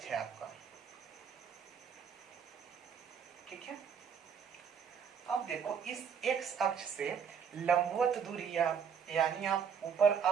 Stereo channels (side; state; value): left; quieter; 7.1 dB